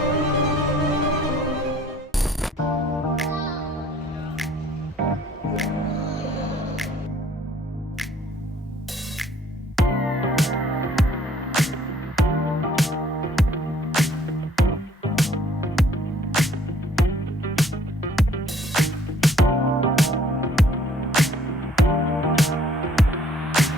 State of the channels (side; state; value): both; normal; correlation 0.59